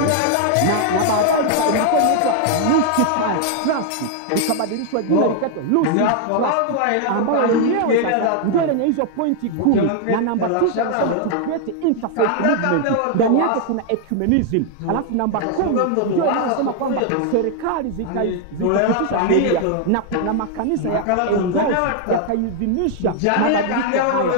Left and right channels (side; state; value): both; different; correlation 0.00